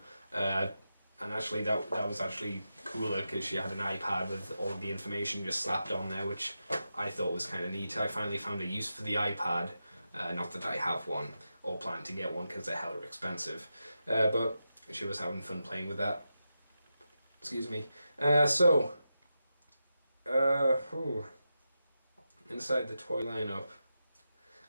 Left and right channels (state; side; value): inverted; both; correlation -0.89